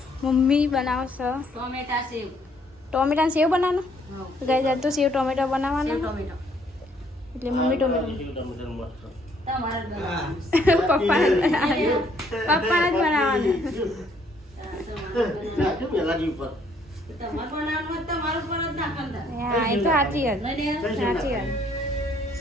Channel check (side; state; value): both; normal; correlation 0.66